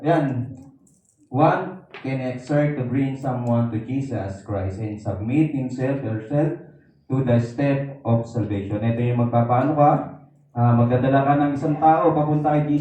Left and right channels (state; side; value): identical; both; correlation 1.00